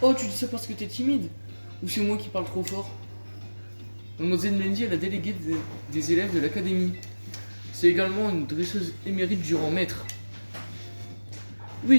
Oh, tu dis ça parce que t'es timide? Ou c'est moi qui parle trop fort? Mademoiselle Mendy est la déléguée des élèves de l'académie. C'est également une dresseuse émérite du rang maître.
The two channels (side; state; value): both; inverted; correlation -1.00